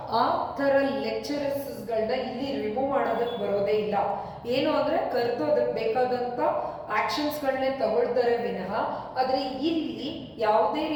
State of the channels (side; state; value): both; identical; correlation 1.00